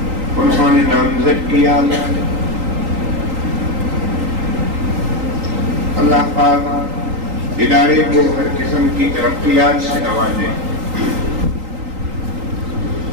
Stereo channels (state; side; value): late; left; 3.8 ms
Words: انہوں نے نامزد کیا۔ اللہ پاک ادارے کو ہر قسم کی ترقیات سے نوازے۔